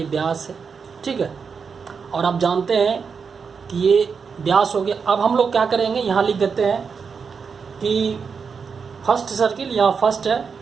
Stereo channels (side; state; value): left; quieter; 5.8 dB